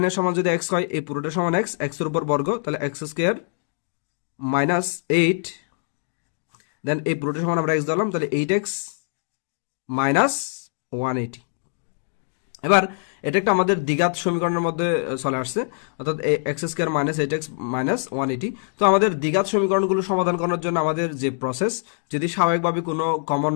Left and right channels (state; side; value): silent; right; digital silence